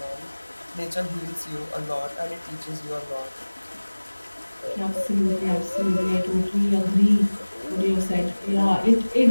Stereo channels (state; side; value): inverted; both; correlation -1.00